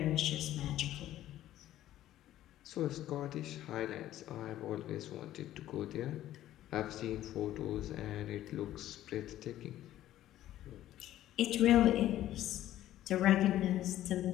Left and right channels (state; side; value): quieter; right; 13.3 dB